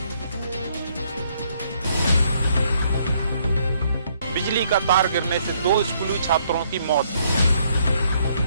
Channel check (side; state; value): both; inverted; correlation -0.69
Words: बिजली का तार गिरने से 2 स्कूली छात्रों की मौत।